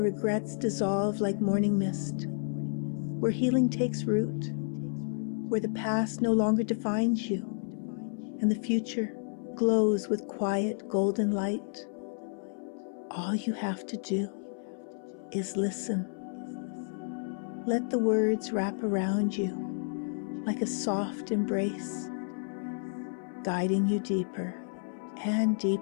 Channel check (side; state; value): right; silent; 57 dB below the other